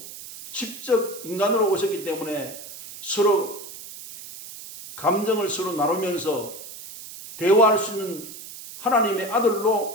직접 인간으로 오셨기 때문에 서로 감정을 서로 나누면서 대화할 수 있는 하나님의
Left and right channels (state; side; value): noise; right; hiss, 13 dB below the sound